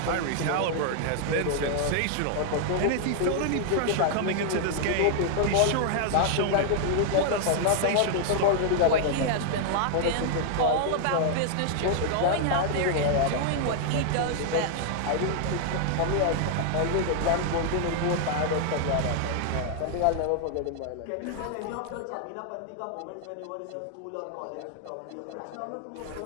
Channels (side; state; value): both; different; correlation 0.00